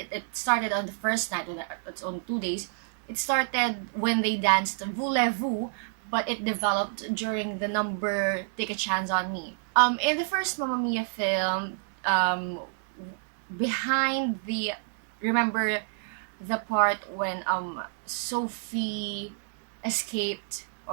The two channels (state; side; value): silent; left; digital silence